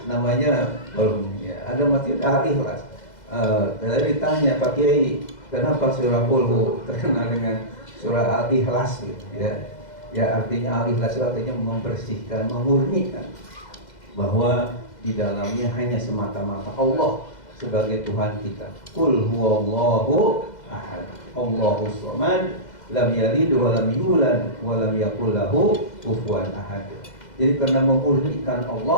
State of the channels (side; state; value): right; late; 2.0 ms